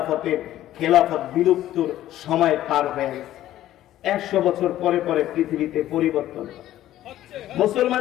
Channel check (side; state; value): right; quieter; 13.4 dB